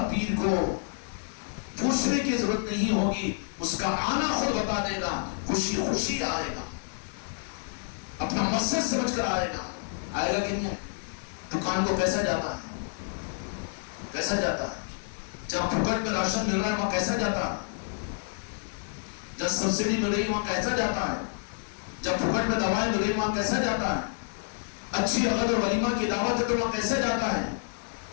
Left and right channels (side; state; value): right; silent; 59 dB below the other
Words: پیر کو پوچھنے کی ضرورت نہیں ہوگی، اس کا آنا خود بتا دے گا، خوشی خوشی آئے گا، اپنا مقصد سمجھ کر آئے گا۔ آئے گا کہ نہیں؟ دکان کو کیسا جاتا ہے؟ کیسا جاتا ہے؟ جب پھوکٹ میں راشن مل رہا ہے وہاں کیسا جاتا ہے؟ جب سبسڈی مل رہی ہے وہاں کیسا جاتا ہے؟ جب پھوکٹ میں دوائیں مل رہی وہاں کیسا جاتا ہے؟ اچھی عقد اور ولیمہ کی دعوت ہے تو وہاں کیسا جاتا ہے؟